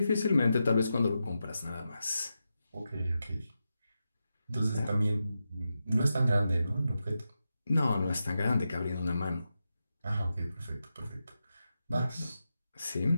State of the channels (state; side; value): inverted; both; correlation -0.89